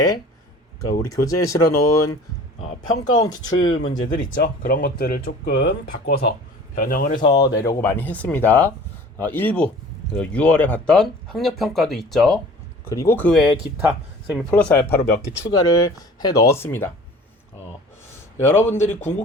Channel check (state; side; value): normal; both; correlation 0.45